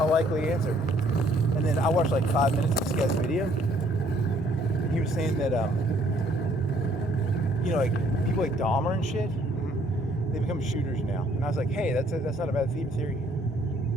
likely answer. And then I watched like 5 minutes of this guy's video. He was saying that you know, like people like Dahmer and shit, they become shooters now. And I was like, hey, that's not a bad theme theory.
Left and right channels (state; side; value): normal; both; correlation 0.63